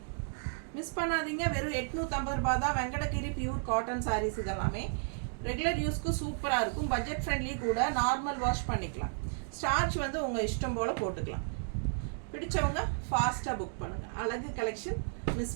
மிஸ் பண்ணாதீங்க. வெறும் 850 ரூபா தான். வெங்கடகிரி பியூர் காட்டன் சாரீஸ் இதெல்லாமே ரெகுலர் யூஸ்க்கு சூப்பராக இருக்கும். பட்ஜெட் ஃப்ரெண்ட்லி கூட. நார்மல் வாஷ் பண்ணிக்கலாம். ஸ்டார்ச் வந்து உங்கள் இஷ்டம் போல் போட்டுக்கலாம். பிடிச்சவங்க ஃபாஸ்ட்டாக புக் பண்ணுங்கள். அழகு கலெக்ஷன்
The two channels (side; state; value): left; silent; digital silence